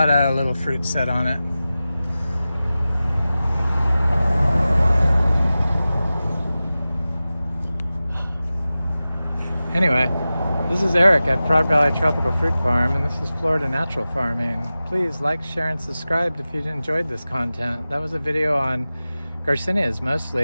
of little fruit set on it. Anyway, this is Eric at Frog Valley Tropical Fruit Farm, and this is Florida Natural Farming. Please like, share, and subscribe if you enjoyed this content. That was a video on Garcinias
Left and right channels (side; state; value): both; inverted; correlation -0.96